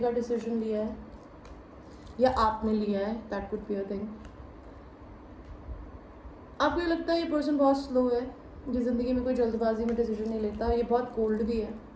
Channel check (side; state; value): both; identical; correlation 1.00